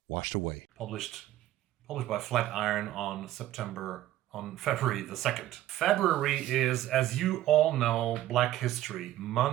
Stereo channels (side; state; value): left; quieter; 14.2 dB